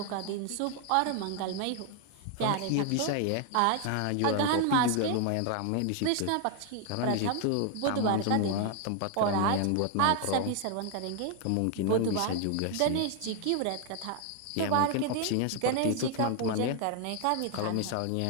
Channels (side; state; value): both; different; correlation 0.00